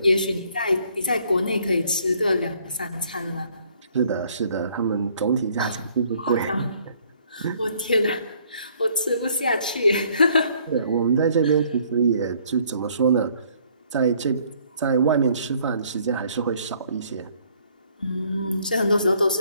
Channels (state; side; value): inverted; both; correlation -0.63